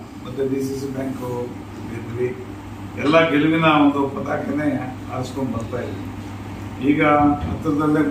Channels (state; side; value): identical; both; correlation 1.00